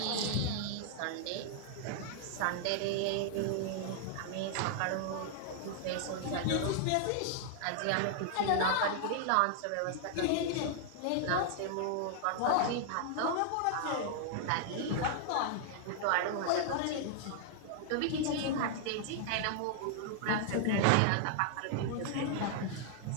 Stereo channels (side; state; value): both; different; correlation 0.00